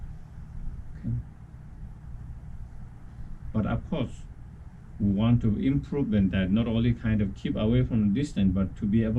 But of course, we want to improve in that, not only kind of keep away from the distance, but to be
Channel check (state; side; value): identical; both; correlation 1.00